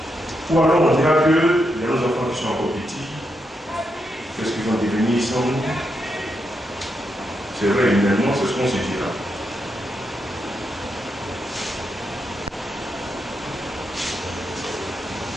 Ou alors on dira que les enfants qui sont encore petits, qu'est-ce qu'ils vont devenir sans nous? C'est vrai, humainement, c'est ce qu'on se dira.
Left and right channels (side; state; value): both; normal; correlation 0.83